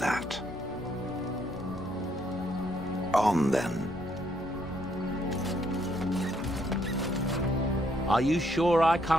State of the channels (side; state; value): both; normal; correlation 0.71